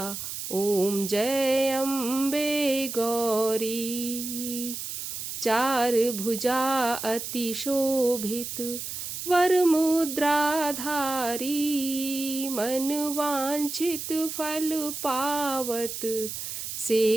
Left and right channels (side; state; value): right; noise; hiss, 6 dB below the sound